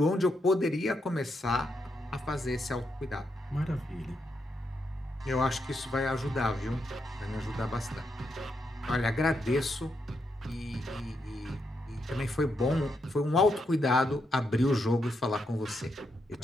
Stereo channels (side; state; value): both; normal; correlation 0.81